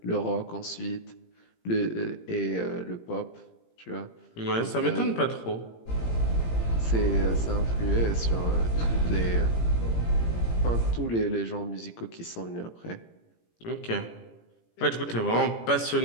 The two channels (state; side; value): late; right; 17 ms